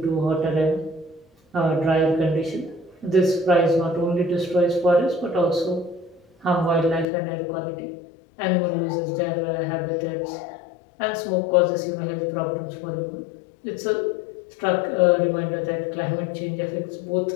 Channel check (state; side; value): drops out; right; at 7.1 s